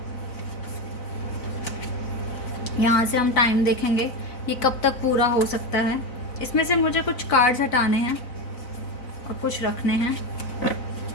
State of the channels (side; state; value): right; late; 4.0 ms